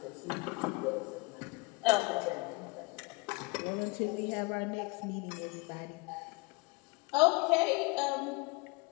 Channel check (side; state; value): right; quieter; 26.9 dB